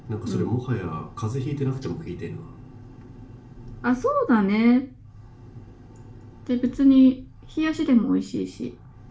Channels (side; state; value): both; identical; correlation 1.00